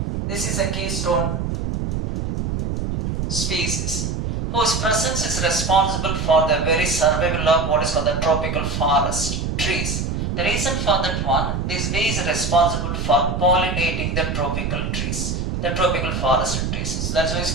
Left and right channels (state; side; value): noise; right; rumble, 2 dB below the sound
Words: This is a keystone species whose presence is responsible for the very survival of what is called the tropical forest trees. The reason for that one, this bee is responsible for pollinating the tropical trees, the tropical forest trees. So that's why it's